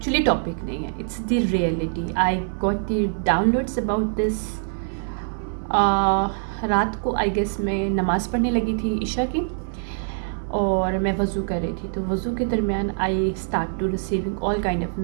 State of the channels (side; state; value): left; silent; 63 dB below the other